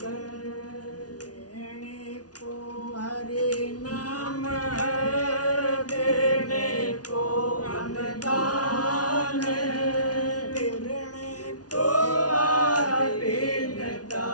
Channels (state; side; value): late; right; 0.69 ms